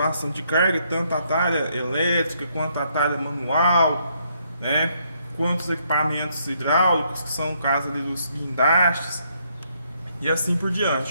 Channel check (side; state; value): both; inverted; correlation -0.72